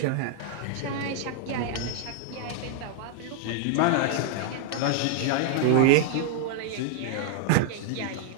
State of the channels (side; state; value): both; different; correlation 0.00